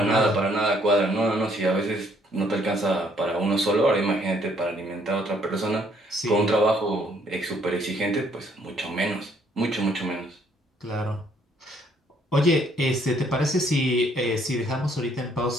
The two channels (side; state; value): both; normal; correlation 0.66